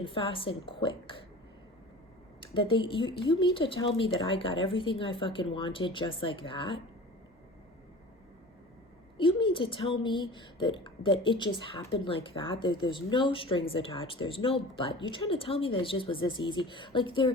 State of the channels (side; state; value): both; normal; correlation 0.39